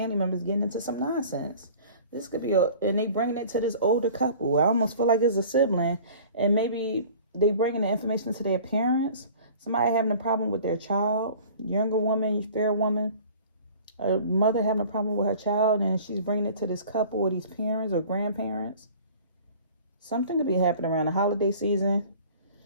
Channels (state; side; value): inverted; both; correlation -0.46